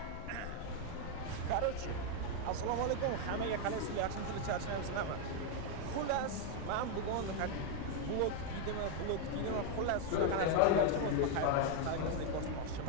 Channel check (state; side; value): different; both; correlation 0.01